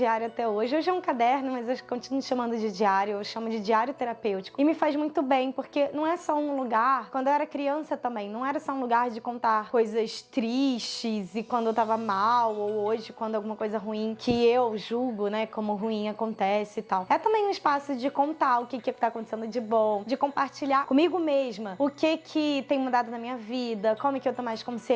até hoje. Hoje é um caderno, mas eu continuo chamando de diário, eu chamo de diário terapêutico. E me faz muito bem, porque não é só um lugar, quando eu era criança também, não era só um lugar de contar coisas tristes e quando eu tava mal, ou hoje quando alguma coisa ruim que eu julgo, né, como ruim acontece e tal. É também um espaço de contar o que tá acontecendo de bom, de compartilhar comigo mesma o que tem mudado na minha vida, como que eu tô mais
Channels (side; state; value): both; identical; correlation 1.00